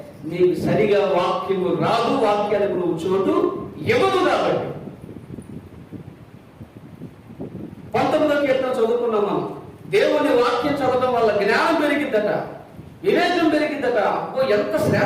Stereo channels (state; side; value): identical; both; correlation 1.00